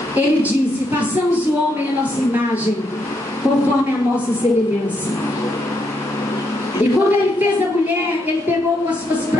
Ele disse: façamos o homem à nossa imagem, conforme a nossa semelhança. E quando Ele fez a mulher, Ele pegou com as suas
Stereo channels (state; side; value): normal; both; correlation 0.77